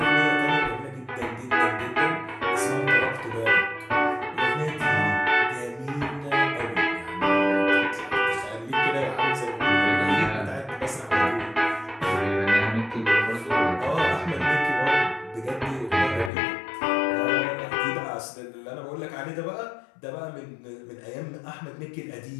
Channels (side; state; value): right; drops out; at 16.3 s